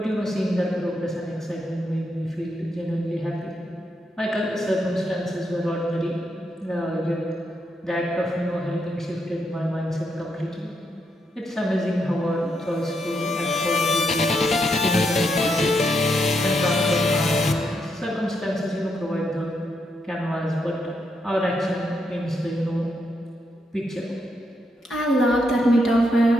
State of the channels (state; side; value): normal; both; correlation 0.80